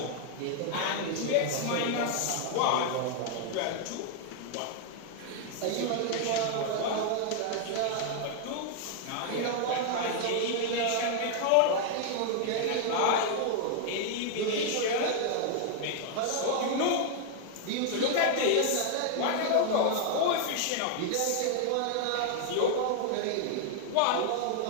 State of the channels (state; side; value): different; both; correlation 0.00